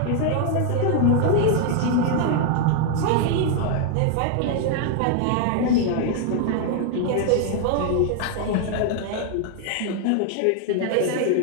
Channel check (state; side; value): different; both; correlation 0.00